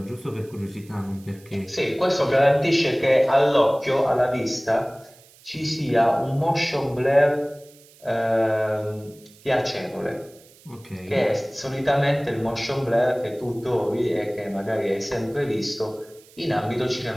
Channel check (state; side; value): noise; right; hiss, 26 dB below the sound